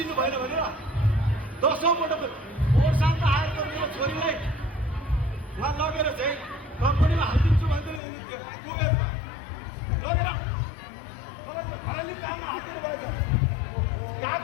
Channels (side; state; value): right; drops out; at 8.0 s